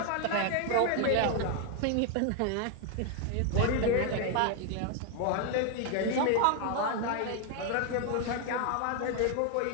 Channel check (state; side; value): different; both; correlation 0.00